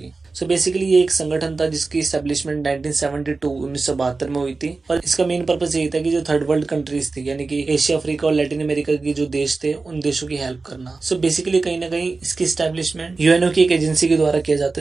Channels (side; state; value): left; quieter; 3.9 dB